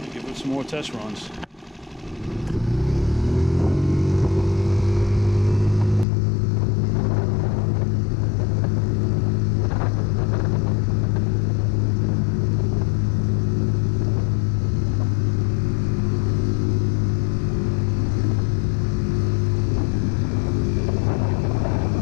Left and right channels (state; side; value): drops out; right; at 6.1 s